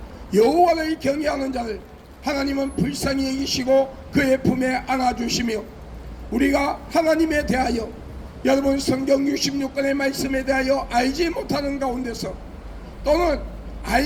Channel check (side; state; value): both; identical; correlation 1.00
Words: 여호와를 경외하는 자를 하나님은 불쌍히 여기시고 그의 품에 안아주시며 우리가 하나님에 대하여 여러분 성경 66권의 말씀에 대하여 알지 못하는 가운데서 또는